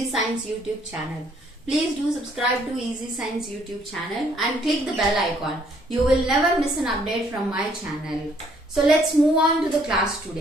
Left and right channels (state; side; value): normal; both; correlation 0.65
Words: Science YouTube channel. Please do subscribe to Easy Science YouTube channel and click the bell icon. You will never miss an update from my channel. So let's move on to the class